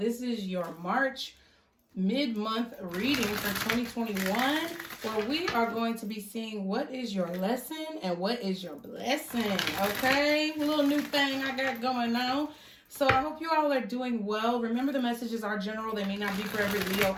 is your March mid-month reading for 2021, where we are going to be seeing what is your lesson and what is your blessing. Okay, a little new thing I got going on. So I hope you all are doing well. Remember, the messages are general. They may not be for every Leo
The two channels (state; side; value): identical; both; correlation 1.00